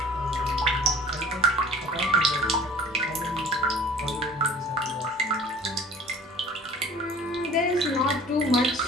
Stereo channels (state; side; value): normal; both; correlation 0.45